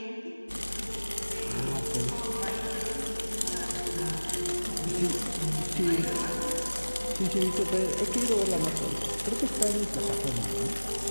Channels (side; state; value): both; inverted; correlation -1.00